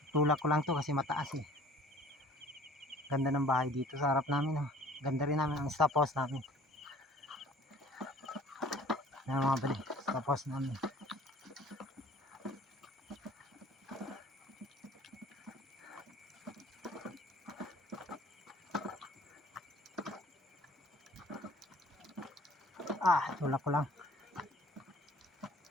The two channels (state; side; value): normal; both; correlation 0.50